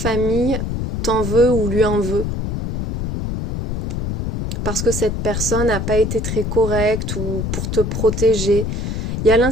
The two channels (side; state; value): left; noise; rumble, 1 dB below the sound